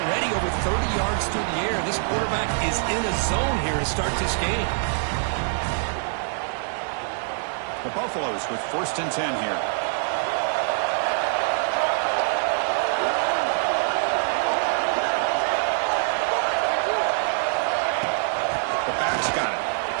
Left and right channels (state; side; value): silent; left; digital silence